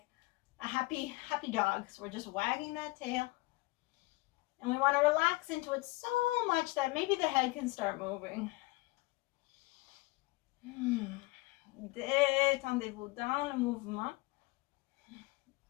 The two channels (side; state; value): right; quieter; 22.6 dB